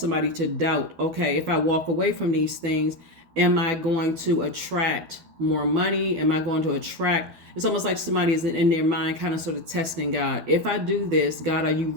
to doubt, okay, if I walk away from these things, am I going to attract more money? Am I going to attract, it's almost like somebody is in their mind kind of sort of testing God. If I do this, God, are you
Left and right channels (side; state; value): left; late; 12 ms